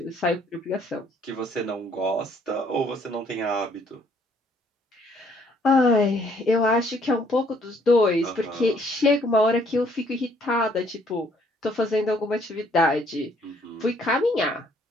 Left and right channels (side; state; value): both; normal; correlation 0.64